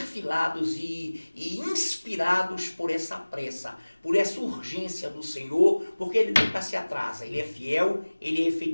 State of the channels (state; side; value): inverted; both; correlation -1.00